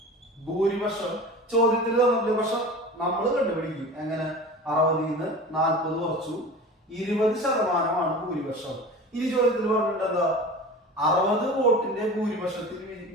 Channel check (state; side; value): normal; both; correlation 0.35